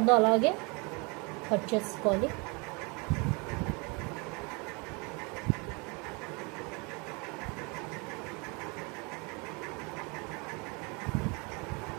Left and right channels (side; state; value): left; quieter; 30.0 dB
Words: అలాగే కట్ చేసుకోవాలి.